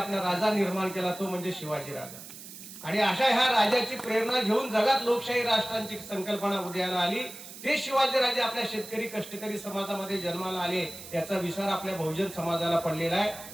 राजा निर्माण केला, तो म्हणजे शिवाजी राजा. आणि अशा ह्या राजाची प्रेरणा घेऊन जगात लोकशाही राष्ट्रांची संकल्पना उदयाला आली. ते शिवाजीराजे आपल्या शेतकरी कष्टकरी समाजामध्ये जन्माला आले. याचा विसर आपल्या बहुजन समाजाला पडलेला आहे,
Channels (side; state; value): right; noise; hiss, 14 dB below the sound